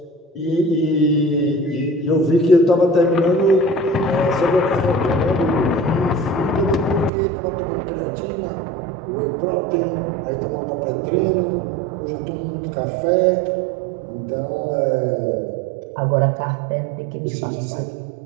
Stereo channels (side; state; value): left; drops out; at 7.1 s